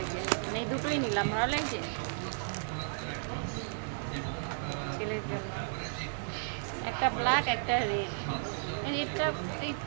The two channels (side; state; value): left; silent; digital silence